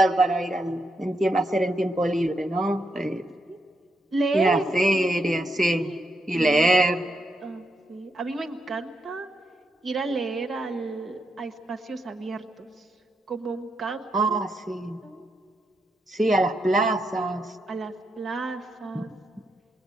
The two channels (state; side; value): normal; both; correlation 0.82